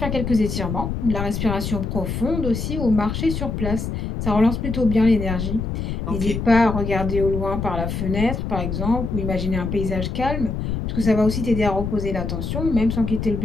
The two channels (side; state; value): left; noise; rumble, 3 dB below the sound